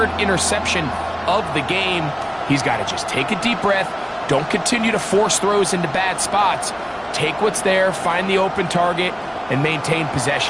interception of the game. He's got to just take a deep breath. Don't continue to force throws into bad spots. Take what's there, find the open target, and maintain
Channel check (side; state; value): both; identical; correlation 1.00